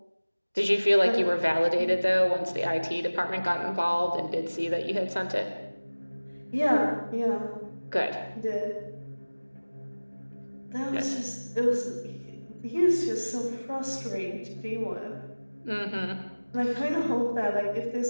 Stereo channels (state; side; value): inverted; both; correlation -1.00